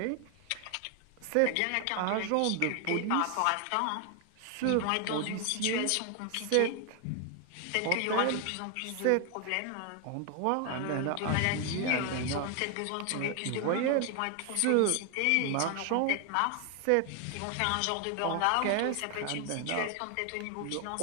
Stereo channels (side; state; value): both; different; correlation 0.01